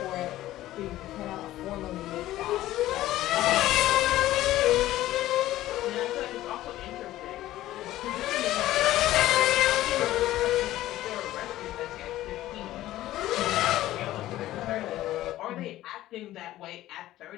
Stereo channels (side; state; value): right; quieter; 14.9 dB